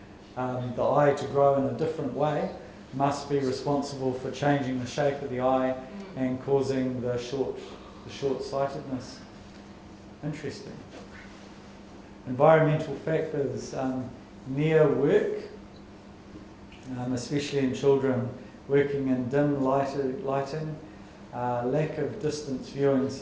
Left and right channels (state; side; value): identical; both; correlation 1.00